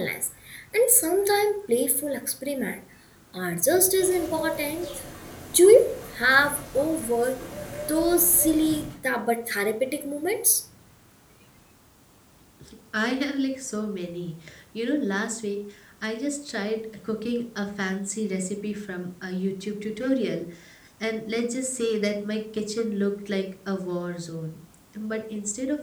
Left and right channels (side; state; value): both; identical; correlation 1.00